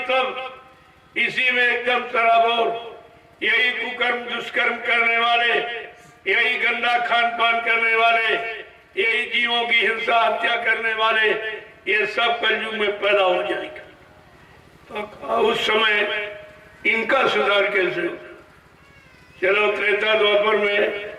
इसी में एकदम सराबोर, यही कुकर्म दुष्कर्म करने वाले, यही गंदा खान पान करने वाले, यही जीवों की हिंसा हत्या करने वाले, ये सब कलयुग में पैदा हो जाएगा। तो उस समय इनका सुधार कैसे हो? चलो त्रेता द्वापर में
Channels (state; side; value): identical; both; correlation 1.00